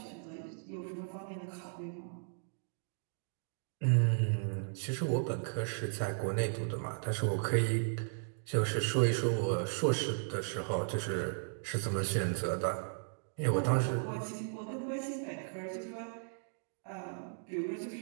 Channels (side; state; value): left; silent; digital silence